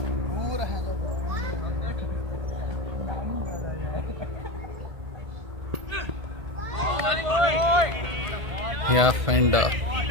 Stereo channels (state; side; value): late; left; 1.5 ms